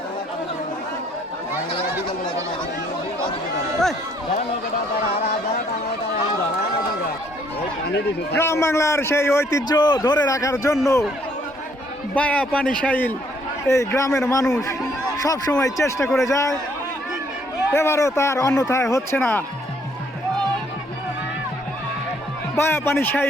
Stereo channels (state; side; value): normal; both; correlation 0.66